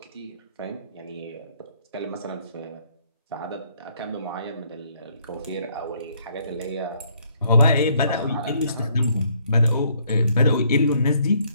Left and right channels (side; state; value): both; inverted; correlation -0.67